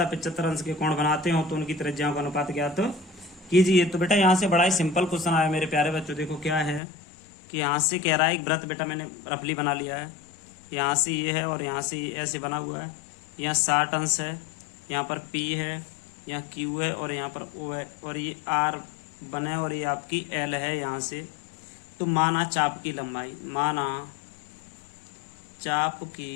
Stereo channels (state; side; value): drops out; right; at 6.8 s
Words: 75 अंश के कोण बनाते हो तो उनकी त्रिज्याओं का अनुपात ज्ञात कीजिए। तो बेटा यहाँ से बड़ा ही सिंपल क्वेश्चन आया मेरे प्यारे बच्चों। देखो क्या है कि यहाँ से कह रहा है एक वृत्त बेटा मैंने रफली बना लिया है, यहाँ से ये है और यहाँ से ये ऐसे बना हुआ है। यहाँ 60 अंश है, यहाँ पर P है, यहाँ Q है और यहाँ पर O है और ये R बने और ये आपकी L है यहाँ से। तो माना चाप की लंबाई, माना चाप